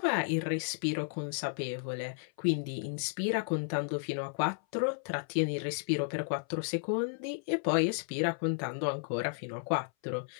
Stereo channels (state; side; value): silent; right; 56 dB below the other